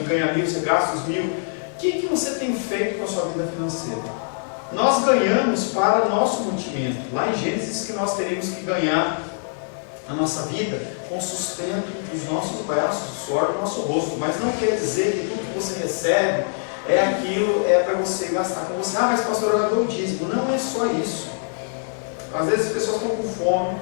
ganha 1.000, você gasta os 1.000? O que você tem feito com a sua vida financeira? Nós ganhamos para o nosso mantimento. Lá em Gênesis que nós teríamos que ganhar a nossa vida com o sustento dos nossos braços, do suor do nosso rosto. Mas não quer dizer que tudo que você recebe é aquilo, é para você gastar com você. Ah, mas pastor, eu dou o dízimo. Não é só isso. Às vezes as pessoas estão com fome,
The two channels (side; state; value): right; silent; digital silence